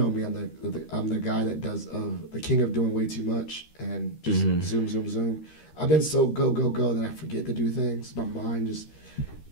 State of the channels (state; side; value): late; right; 13 ms